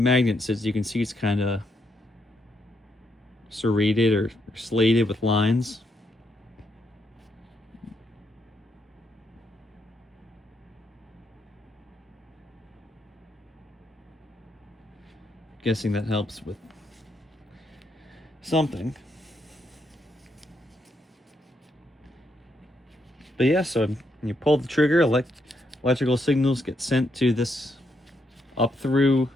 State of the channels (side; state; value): both; normal; correlation 0.78